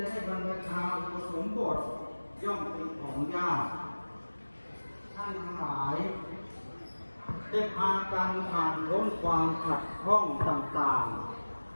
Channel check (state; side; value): inverted; both; correlation -1.00